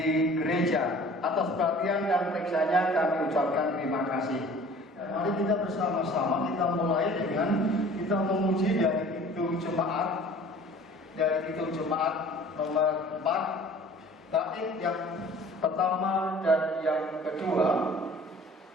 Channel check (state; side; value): normal; both; correlation 0.47